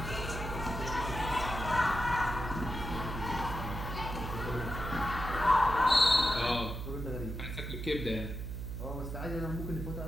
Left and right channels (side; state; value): right; noise; hum, 6 dB below the sound